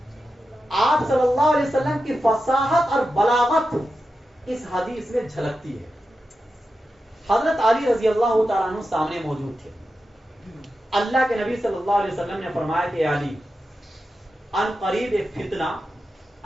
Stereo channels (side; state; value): both; normal; correlation 0.90